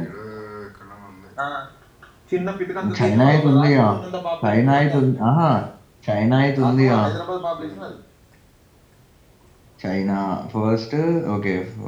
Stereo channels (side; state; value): both; identical; correlation 1.00